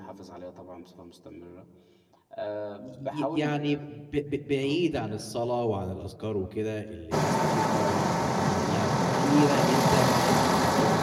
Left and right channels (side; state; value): both; identical; correlation 1.00